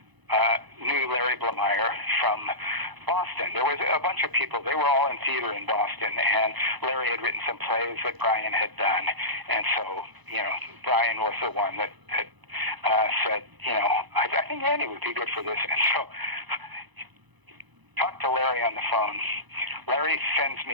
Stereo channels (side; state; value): left; late; 1.0 ms